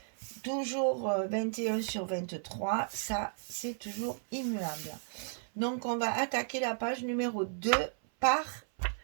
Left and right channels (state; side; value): silent; left; 55 dB below the other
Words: Toujours 21 sur 23, ça, c'est toujours immuable. Donc, on va attaquer la page numéro 2 par